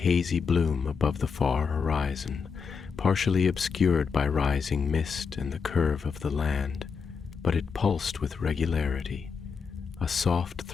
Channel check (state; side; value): quieter; right; 5.8 dB